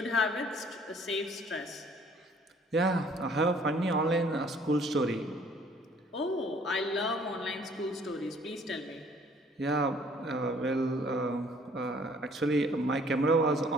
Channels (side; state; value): both; normal; correlation 0.58